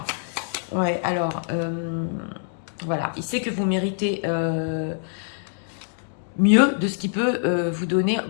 Ouais, alors, voilà, il sait que vous méritez mieux de ce qu'il peut vous donner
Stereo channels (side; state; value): right; silent; digital silence